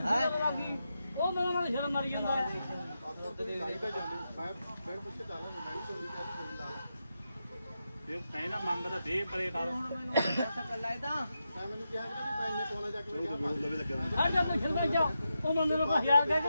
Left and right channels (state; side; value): inverted; both; correlation -0.87